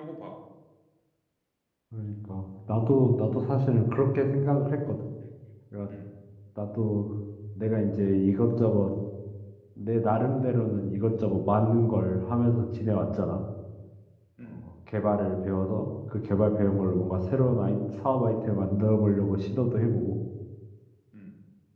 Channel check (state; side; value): identical; both; correlation 1.00